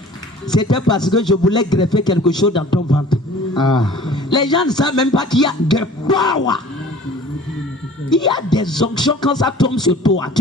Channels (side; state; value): both; normal; correlation 0.47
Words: C'était parce que je voulais greffer quelque chose dans ton ventre. Les gens ne savent même pas qu'il y a des power. Il y a des onctions quand ça tombe sur toi.